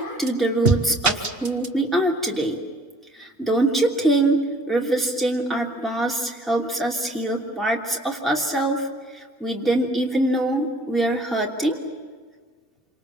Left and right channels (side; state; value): both; normal; correlation 0.56